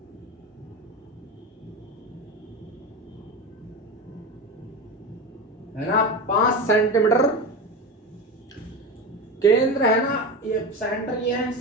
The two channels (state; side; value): normal; both; correlation 0.24